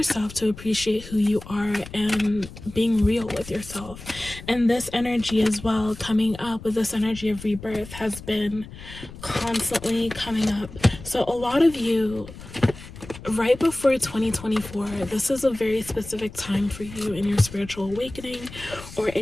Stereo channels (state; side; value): noise; left; rumble, 15 dB below the sound